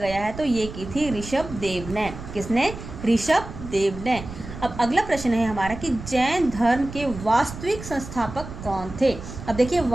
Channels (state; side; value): noise; right; rumble, 11 dB below the sound